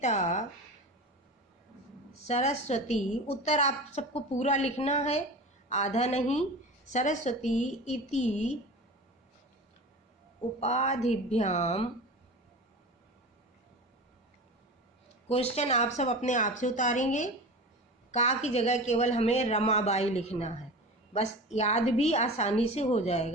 सरस्वती। उत्तर आप सबको पूरा लिखना है, आधा नहीं। सरस्वती इति उपाधिभ्याम, क्वेश्चन आप सब अपने आप से उतारेंगे। का की जगह केवल हमें रमाबाई लिखना है, बस याद भी आसानी से हो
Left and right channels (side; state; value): both; normal; correlation 0.32